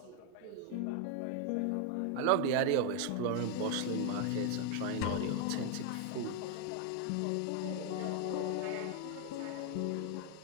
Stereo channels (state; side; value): different; both; correlation 0.01